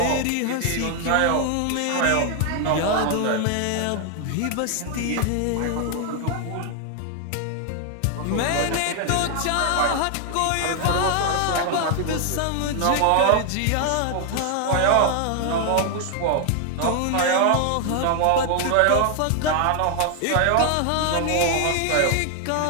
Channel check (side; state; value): both; different; correlation 0.00